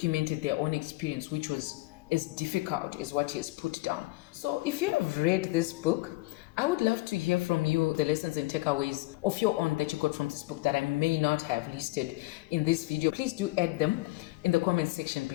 their own experience, which was as difficult as what he has put down. So if you've read this book, I would love to hear from you the lessons and takeaways of your own that you got from this book that I may not have listed in this video. Please do add them in the comment section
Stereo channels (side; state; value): right; quieter; 21.5 dB